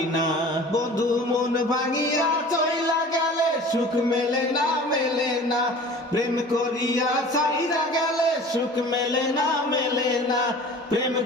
না। বন্ধু মন ভাঙিয়া চইলা গেলে সুখ মেলে না, মেলে না। প্রেম করিয়া ছাইরা গেলে সুখ মেলে না, মেলে না। প্রেম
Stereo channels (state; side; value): normal; both; correlation 0.43